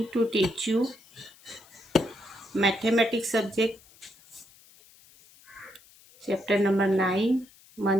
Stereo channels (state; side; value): noise; left; hiss, 26 dB below the sound